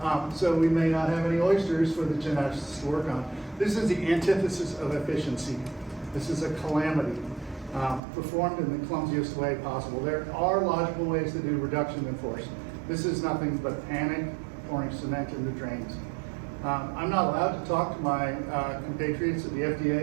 So we may not have any oysters for the geneticists to work on. This is the antithesis of efficiency. This is a calamity performed in the clumsiest way possible. There are logical ways to do reduction in force. This is nothing but panic, pouring cement in the drains. I'm not allowed to talk to my compatriots at the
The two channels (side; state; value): left; drops out; at 8.0 s